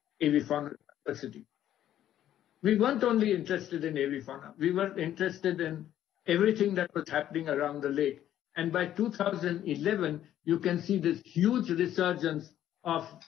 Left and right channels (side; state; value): right; quieter; 11.7 dB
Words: avifauna diversity. We weren't only interested in avifauna, we were interested in everything that was happening around the lake. And by 2011, you can see this huge resurgence of